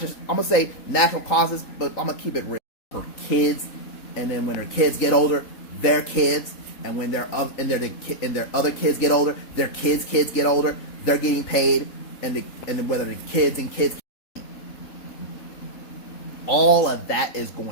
I'm going to say natural causes, but I'm going to keep it real. Her kids, and then when her kids get older, their kids, and when their other kids get older, their kids get older, they're getting paid, and then whether the kids, all of that is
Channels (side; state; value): right; late; 3.8 ms